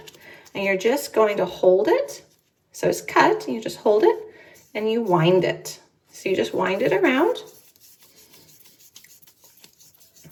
and you're just going to hold it. So it's cut, you just hold it and you wind it. So you just wind it around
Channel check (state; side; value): identical; both; correlation 1.00